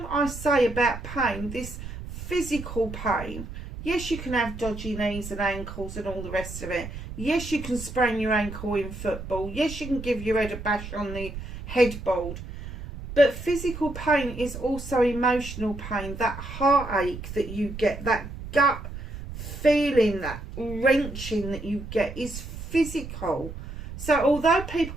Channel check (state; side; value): noise; right; rumble, 10 dB below the sound